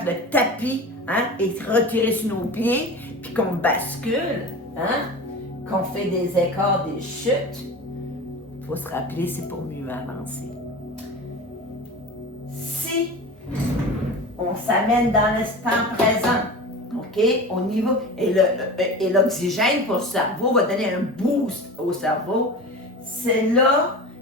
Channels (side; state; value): both; normal; correlation 0.32